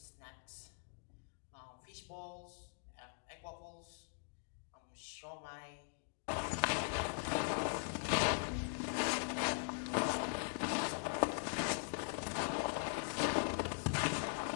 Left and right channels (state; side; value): silent; right; digital silence